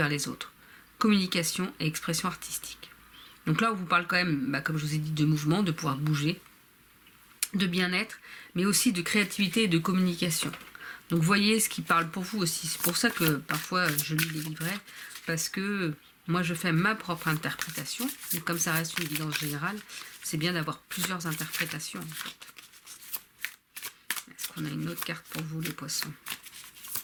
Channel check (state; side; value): identical; both; correlation 1.00